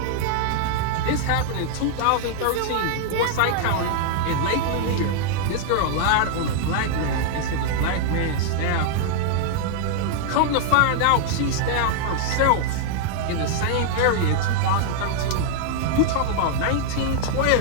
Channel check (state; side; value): different; both; correlation -0.01